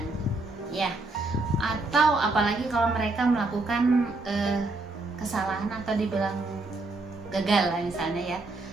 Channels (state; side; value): quieter; left; 3.1 dB